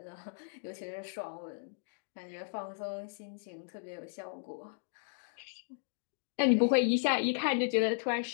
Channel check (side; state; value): right; silent; digital silence